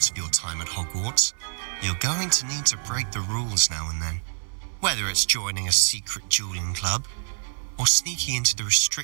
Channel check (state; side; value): silent; left; 58 dB below the other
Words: of your time at Hogwarts, you're going to need to break the rules now and then. Whether it's joining a secret dueling club or sneaking into the